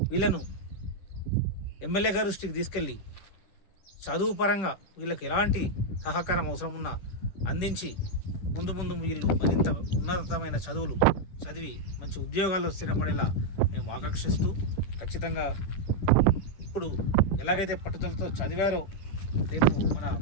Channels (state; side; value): late; right; 10 ms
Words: వీళ్ళను ఎమ్మెల్యే గారి దృష్టికి తీసుకెళ్ళి చదువు పరంగా వీళ్ళకి ఎలాంటి సహకారం అవసరం ఉన్నా అందించి ముందు వీళ్ళు మరింత ఉన్నతమైన చదువులు చదివి మంచి ఉద్యోగాల్లో స్థిరపడేలా మేము ఆకాంక్షిస్తూ, ఖచ్చితంగా ఇప్పుడు ఎలాగైతే పట్టుదలతో చదివారో రేపు మన